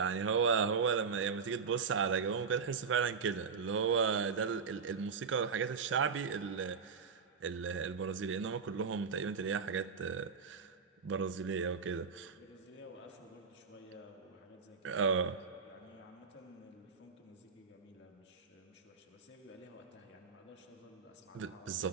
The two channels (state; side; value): quieter; left; 5.8 dB